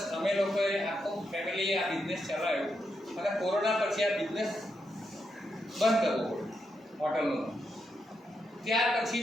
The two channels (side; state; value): both; normal; correlation 0.83